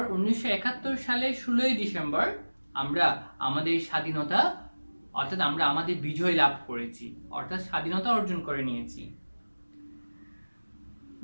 1971 সালের 16 ডিসেম্বর আমরা আমাদের স্বাধীনতা অর্থাৎ আমরা আমাদের বিজয় লাভ করেছি, অর্থাৎ স্বাধীনতা অর্জন করে নিয়েছি।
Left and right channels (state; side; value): inverted; both; correlation -1.00